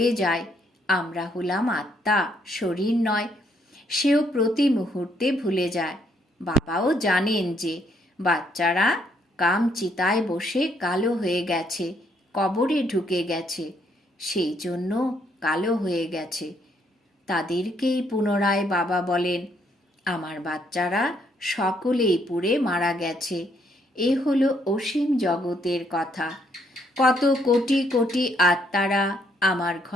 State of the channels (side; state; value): both; normal; correlation 0.71